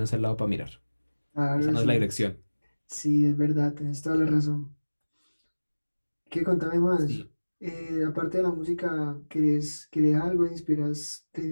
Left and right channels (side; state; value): both; inverted; correlation -1.00